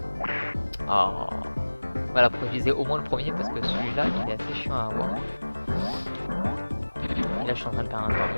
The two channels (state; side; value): inverted; both; correlation -1.00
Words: Oh. Voilà pourquoi je disais au moins le premier parce que celui-là il est assez chiant à avoir. Et là je suis en train de faire un